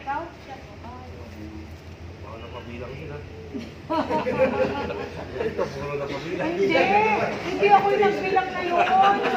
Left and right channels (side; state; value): both; identical; correlation 1.00